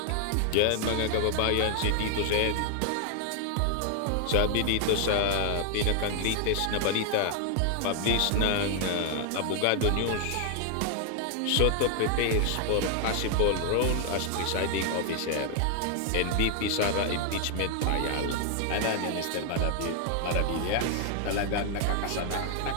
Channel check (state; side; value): different; both; correlation 0.00